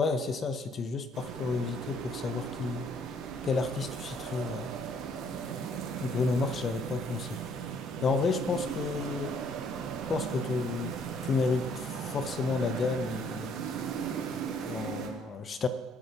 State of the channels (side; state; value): both; normal; correlation 0.63